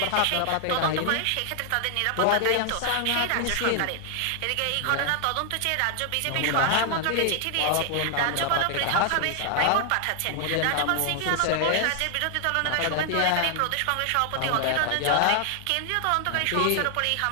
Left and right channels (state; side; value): different; both; correlation 0.00